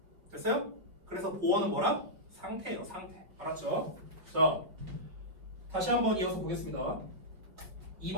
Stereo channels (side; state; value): left; late; 5.1 ms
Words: 됐어요? 그래서 보어는 뭐라? 상태예요, 상태. 알았죠? 자, 다시 한번 이어서 보겠습니다.